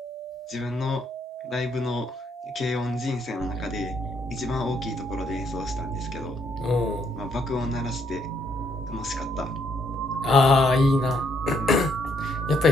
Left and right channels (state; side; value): normal; both; correlation 0.72